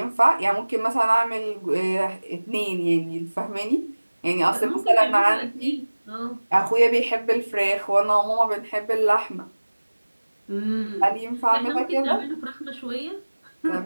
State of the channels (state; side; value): inverted; both; correlation -1.00